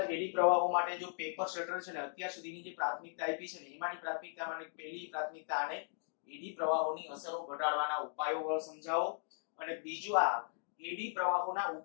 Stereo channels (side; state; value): right; silent; digital silence